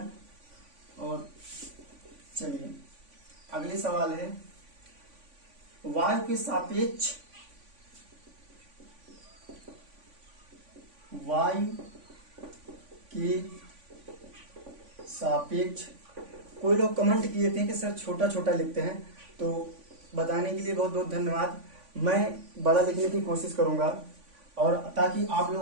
और चलिए अगली सवाल है, वायु के सापेक्ष, वायु के सापेक्ष, कोई लोग कमेंट किए थे कि सर छोटा छोटा लिखते हैं, तो बताने के लिए बहुत बहुत धन्यवाद। मैं बड़ा लिखने की कोशिश करूंगा और ताकि आप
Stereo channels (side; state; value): left; late; 3.5 ms